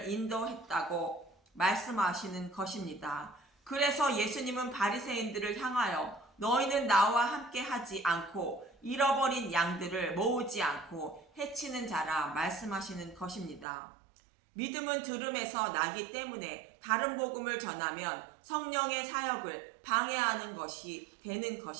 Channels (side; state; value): left; drops out; at 13.7 s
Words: 인도했다고 말씀하시는 것입니다. 그래서 예수님은 바리새인들을 향하여 너희는 나와 함께 하지 않고 잃어버린 양들을 모으지 않고 해치는 자라 말씀하시는 것입니다. 믿음은 들음에서 나기 때문에 다른 복음을 전하면 성령의 사역을 방해하는 것이 되는